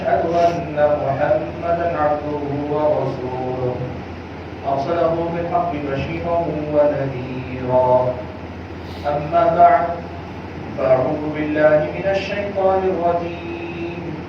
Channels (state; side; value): identical; both; correlation 1.00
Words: أن محمدا عبده ورسوله أرسله بالحق بشيرا ونذيرا أما بعد فأعوذ بالله من الشيطان الرجيم